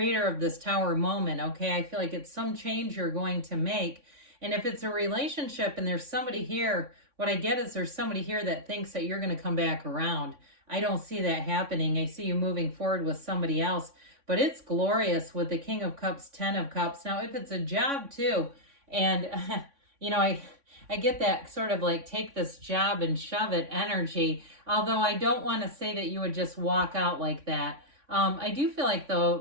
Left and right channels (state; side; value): late; left; 3.6 ms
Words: of this Tower moment, okay? I feel like it's some change you're going to make. And if it's a relationship and there's somebody here, what I get is there's somebody here that thinks that you're going to come back around. I don't see that happening. I see you moving forward with somebody else. But it's glorious with the King of Cups, Ten of Cups. Now, if it's a job too, and, you know, I get that sort of like take this job and shove it energy, although I don't want to say that you would just walk out like that. I do feel like,